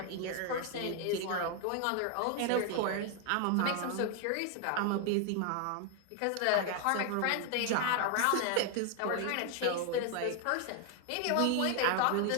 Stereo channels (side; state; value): both; different; correlation 0.00